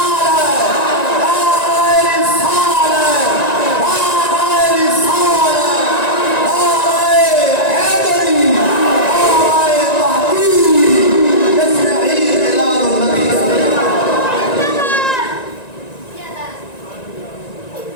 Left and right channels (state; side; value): late; right; 1.9 ms